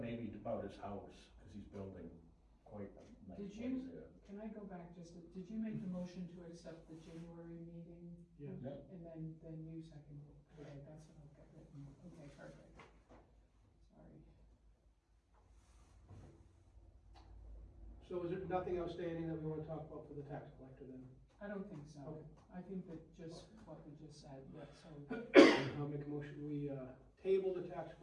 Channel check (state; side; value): identical; both; correlation 1.00